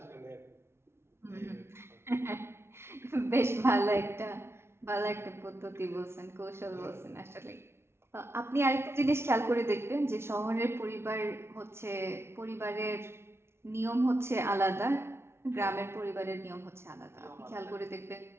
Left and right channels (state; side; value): late; left; 0.12 ms